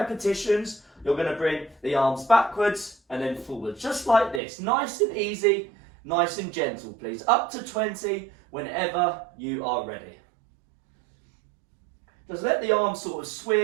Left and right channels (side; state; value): left; drops out; at 4.4 s